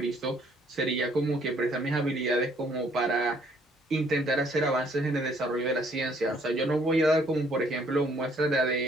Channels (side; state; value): both; normal; correlation 0.64